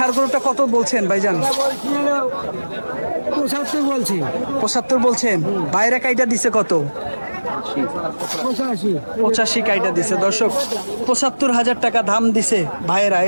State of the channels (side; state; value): both; inverted; correlation -1.00